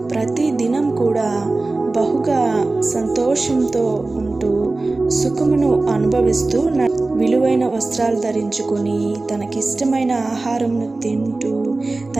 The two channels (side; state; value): left; quieter; 3.2 dB